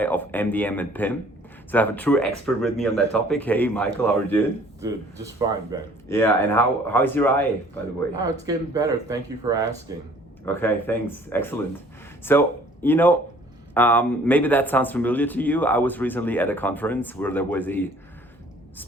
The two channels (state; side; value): normal; both; correlation 0.55